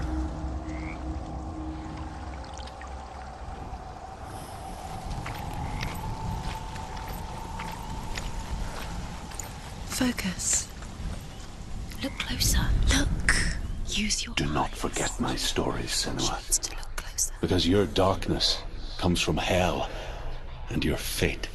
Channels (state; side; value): identical; both; correlation 1.00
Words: Focus. Look closer. Look. Use your Do not eyes. forget my stories, Senua. Needs to look closer. Because your darkness comes from hell, and your fate